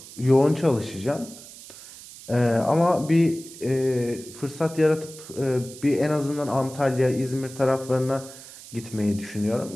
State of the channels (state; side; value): noise; right; hiss, 17 dB below the sound